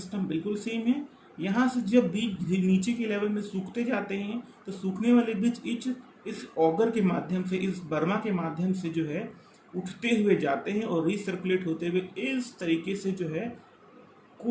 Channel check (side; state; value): both; identical; correlation 1.00